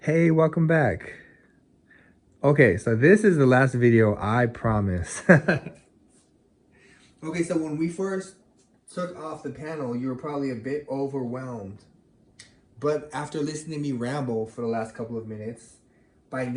Hey, welcome back. Okay, so this is the last video, I promise. Okay, so when we first took off the panel, you were probably a bit overwhelmed. But after listening to me ramble for the last couple of minutes, by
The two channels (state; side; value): identical; both; correlation 1.00